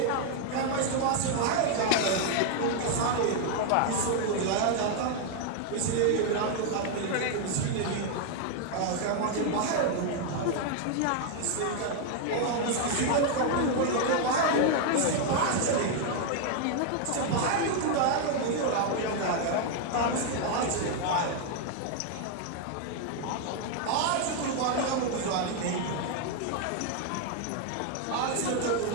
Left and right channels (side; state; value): both; different; correlation 0.00